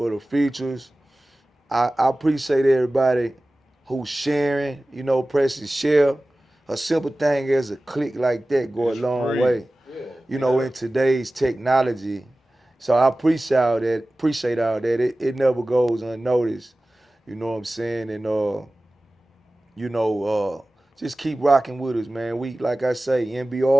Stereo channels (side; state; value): both; normal; correlation 0.97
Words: the features. I appreciate everybody who's sharing, you know, pressing share. A simple thing as a click like that go a it's long free. way, Yeah. you know, in today's technology. So I appreciate all that. Appreciate all that. It never goes unnoticed. You know what I'm saying? And you know, just keep rocking with us, man. We like I say,